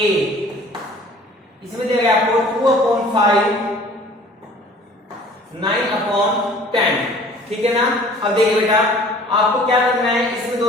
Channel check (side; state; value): both; normal; correlation 0.50